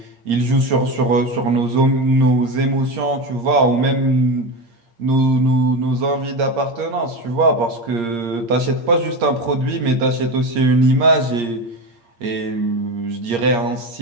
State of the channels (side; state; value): left; late; 8.6 ms